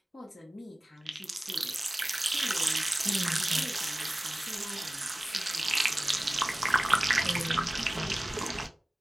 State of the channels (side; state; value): both; normal; correlation 0.97